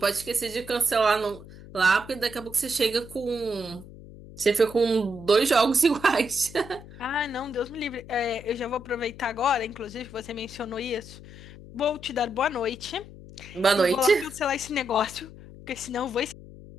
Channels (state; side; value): noise; left; hum, 17 dB below the sound